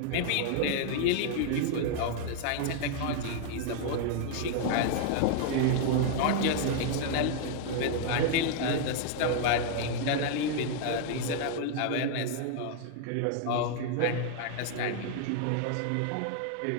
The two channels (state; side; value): different; both; correlation 0.00